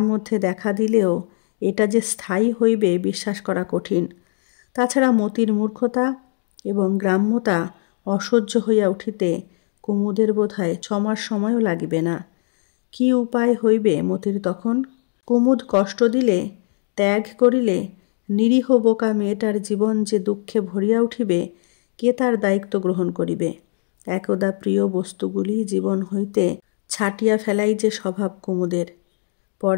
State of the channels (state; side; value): silent; right; 65 dB below the other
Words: মধ্যে দেখা দিলেও এটা যে স্থায়ী হইবে বিশ্বাস করা কঠিন। তাছাড়া মতির মূর্খতা এবং গ্রাম্যতা অসহ্য হইয়া উঠিতে কুমুদের বোধহয় 6 মাস সময়ও লাগিবে না। কি উপায় হইবে মতির তখন? কুমুদ কষ্ট দিলে, ত্যাগ করিলে নিরীহ বোকা মেয়েটার জীবন যে দুঃখে ভরিয়া উঠিবে, কে তার দায়িত্ব গ্রহণ করিবে? একদা প্রিয় বস্তুগুলি জীবন হইতে ছাটিয়া ফেলাই যে স্বভাব কুমুদের।